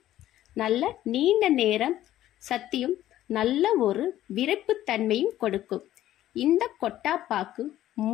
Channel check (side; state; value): right; quieter; 13.3 dB